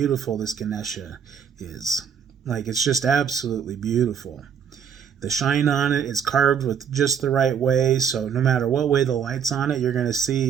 this Ganesha is. Like, it's just absolutely beautiful. The shine on it is carved with just the right way, so no matter what way the light's on it, you're going to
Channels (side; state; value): left; quieter; 7.7 dB